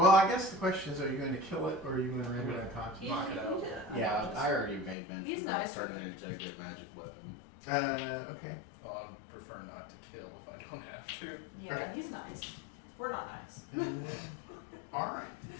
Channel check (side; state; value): right; drops out; at 5.0 s